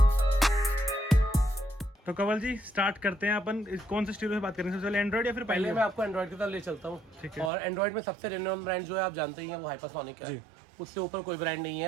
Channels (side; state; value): left; drops out; at 7.5 s